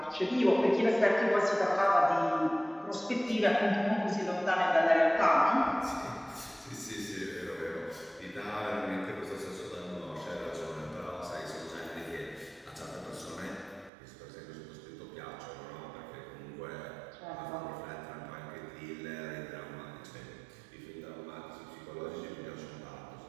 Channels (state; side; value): drops out; left; at 13.9 s